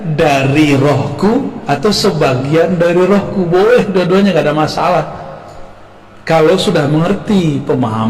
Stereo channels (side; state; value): both; identical; correlation 1.00